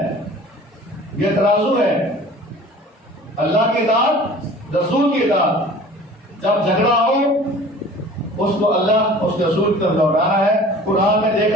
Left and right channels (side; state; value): both; normal; correlation 0.45